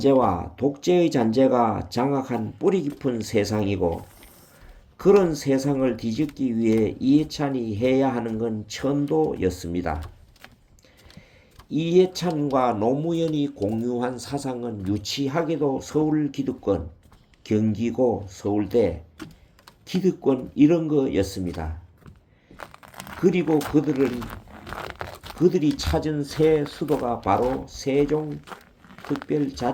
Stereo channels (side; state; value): both; identical; correlation 1.00